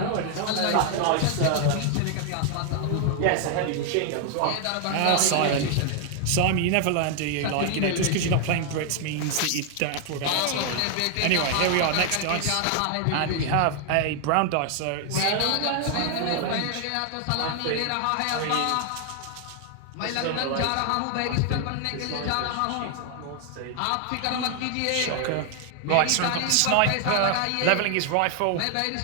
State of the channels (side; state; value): both; different; correlation 0.00